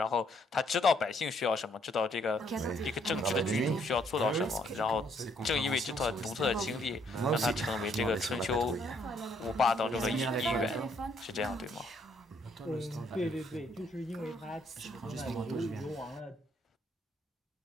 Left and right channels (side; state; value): both; normal; correlation 0.69